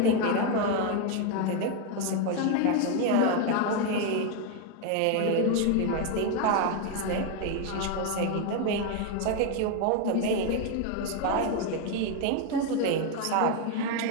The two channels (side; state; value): both; different; correlation 0.01